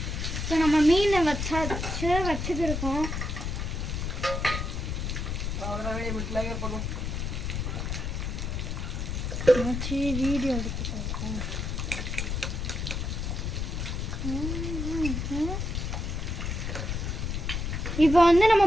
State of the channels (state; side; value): noise; left; rumble, 2 dB below the sound